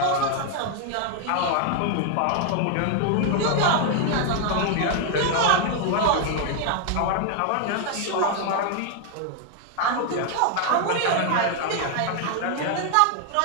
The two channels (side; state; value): both; different; correlation 0.00